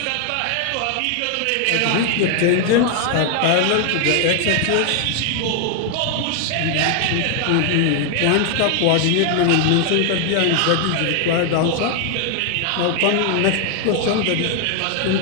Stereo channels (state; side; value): different; both; correlation 0.00